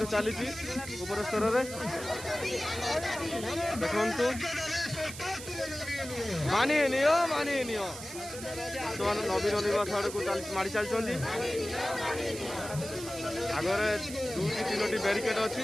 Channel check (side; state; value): right; noise; hiss, 11 dB below the sound